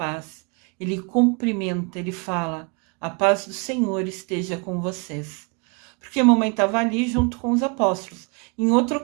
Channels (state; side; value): quieter; left; 33.0 dB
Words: Ele cumprimenta, ele fala: a paz do Senhor esteja com vocês. Porque a mamãe estava ali junto com os apóstolos. Em outra